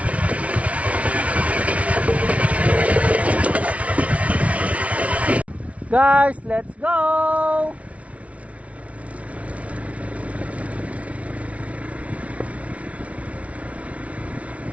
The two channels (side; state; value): left; late; 0.065 ms